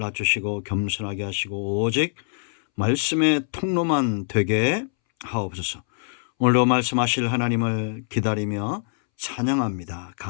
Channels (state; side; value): silent; right; 63 dB below the other